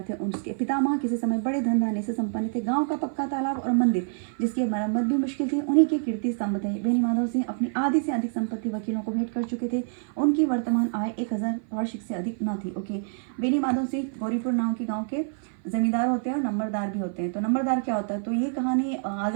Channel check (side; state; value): left; silent; 56 dB below the other